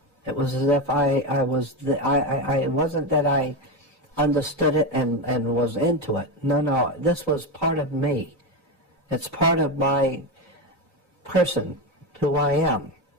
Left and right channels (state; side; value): normal; both; correlation 0.14